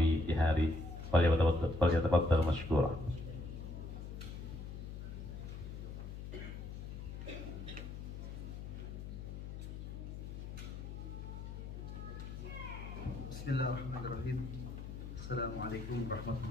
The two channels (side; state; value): left; noise; hum, 8 dB below the sound